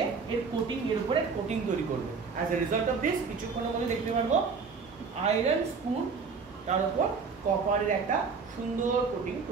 এর কোটিং, এর উপরে কোটিং তৈরি করবে। As a result of this কিছুক্ষণের মধ্যে দেখতে পারবো আয়রন স্পুন, তার উপর কপারের একটা সুন্দর কোটিং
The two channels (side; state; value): left; quieter; 5.2 dB